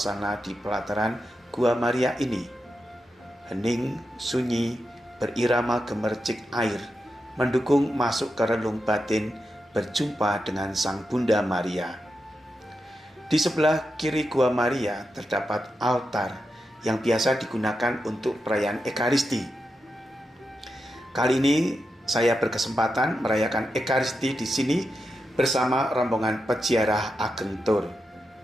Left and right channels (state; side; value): normal; both; correlation 0.88